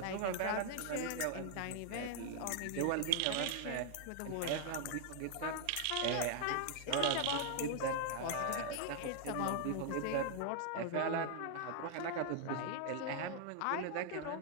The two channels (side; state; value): both; different; correlation 0.00